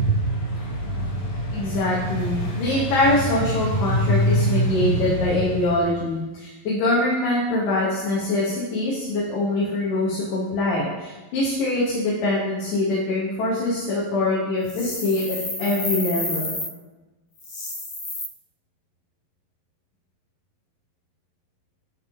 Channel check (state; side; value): late; right; 11 ms